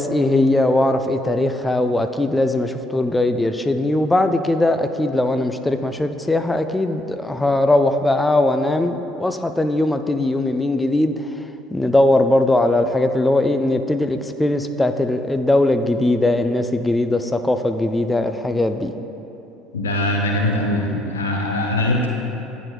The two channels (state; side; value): normal; both; correlation 0.78